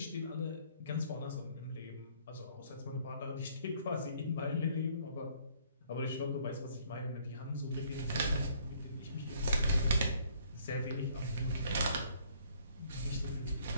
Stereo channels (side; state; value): both; inverted; correlation -0.62